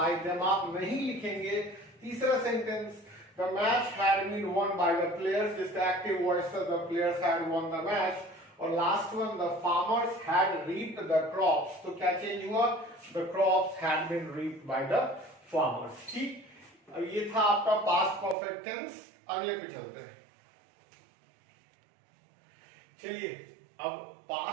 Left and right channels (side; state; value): left; drops out; at 18.4 s